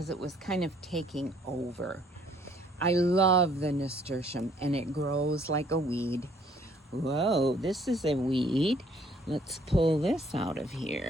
it was kind of taking over. I love the nasturtium and it grows like a weed. Whoa, this is a weed. Let's pull this out of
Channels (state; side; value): normal; both; correlation 0.62